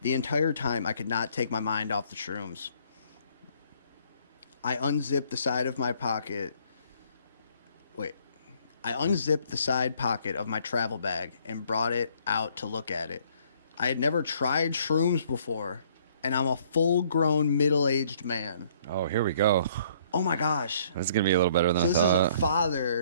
The entire time, I could not take my mind off the shrooms. I unzipped the side pocket of my travel bag and brought it out to look at it. I had never tried shrooms before, and I'm a full-grown, middle-aged man. Oh, here we go. Oh my gosh. This is going to be a little better than So I this thought. is a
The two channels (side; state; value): both; inverted; correlation -0.62